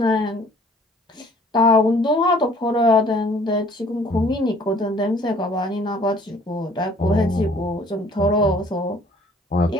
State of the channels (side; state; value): both; normal; correlation 0.56